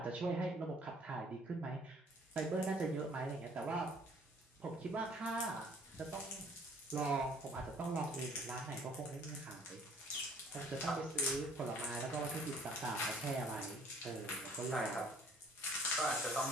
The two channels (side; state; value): both; normal; correlation 0.57